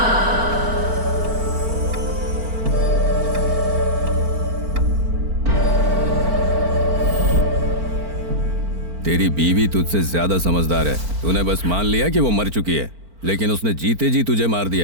तेरी बीवी तुझसे ज्यादा समझदार है। तूने बस मान लिया कि वो मर चुकी है, लेकिन उसने जीते जी तुझे मार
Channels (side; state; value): left; late; 4.4 ms